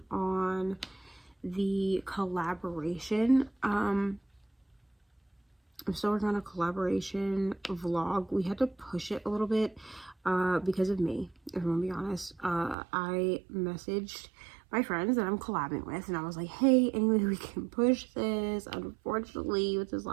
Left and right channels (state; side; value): drops out; left; at 12.8 s